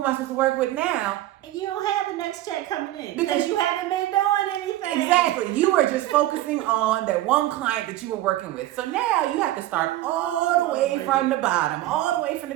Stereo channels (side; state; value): left; quieter; 15.1 dB